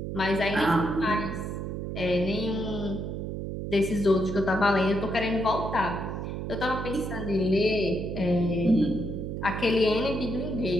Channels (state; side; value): noise; right; hum, 5 dB below the sound